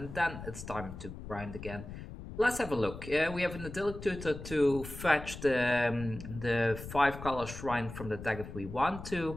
then it's time to grind again. Let's have a look. We have an idyllic tutor to fetch the 5-color shrine from the deck if we want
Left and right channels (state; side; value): noise; left; rumble, 11 dB below the sound